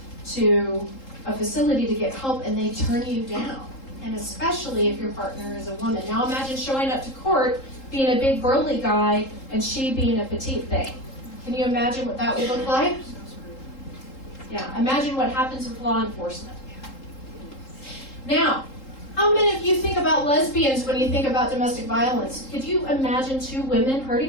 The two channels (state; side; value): late; right; 3.8 ms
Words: to a facility to get help and they turn you down, and especially if your partner is a woman. Now imagine showing up to court being a big burly guy and she being a petite thing. Can you imagine what that would look like? Yeah, imagine what happens with law enforcement. Now, how many of you think about lesbians when you think about domestic violence? Could you imagine two women